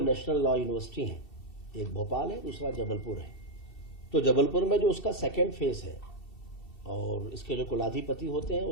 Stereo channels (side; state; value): right; late; 2.7 ms